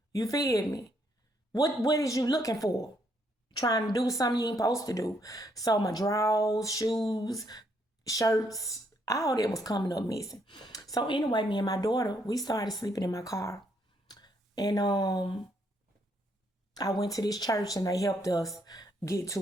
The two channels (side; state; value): both; normal; correlation 0.73